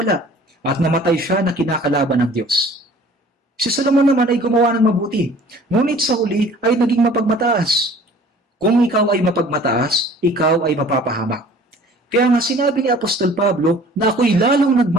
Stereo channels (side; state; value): both; normal; correlation 0.50